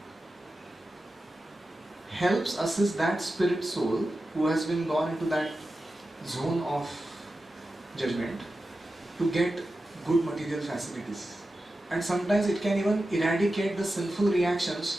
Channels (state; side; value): normal; both; correlation 0.92